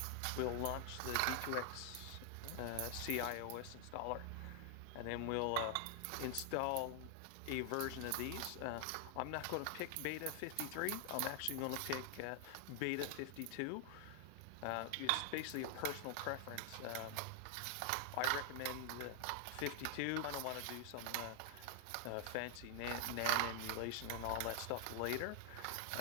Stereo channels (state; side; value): different; both; correlation 0.00